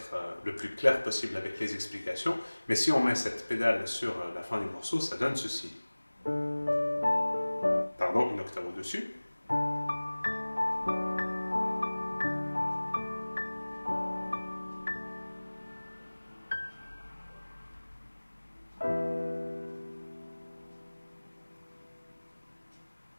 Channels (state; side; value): inverted; both; correlation -1.00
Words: le plus clair possible avec les explications, mais si on met cette pédale sur la fin du morceau, ça donne ceci. Pardon, une octave au-dessus.